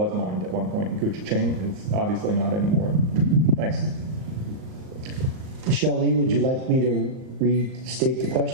mined at one point in Couchiching. It's obviously not anymore. Thanks. Shelley, would you like me to restate the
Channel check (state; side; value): late; left; 38 ms